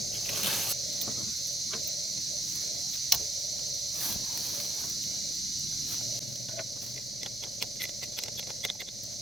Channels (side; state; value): both; normal; correlation 0.74